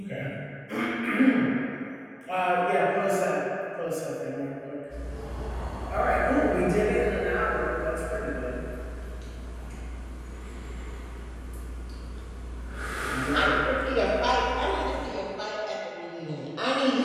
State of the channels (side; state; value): both; identical; correlation 1.00